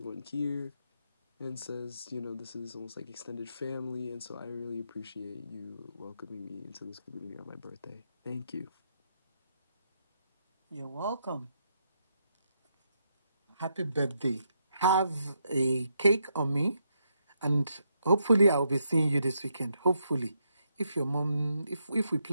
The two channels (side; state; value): both; inverted; correlation -0.79